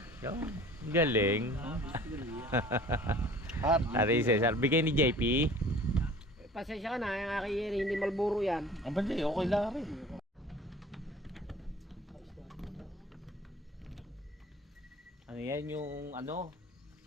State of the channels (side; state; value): both; normal; correlation 0.46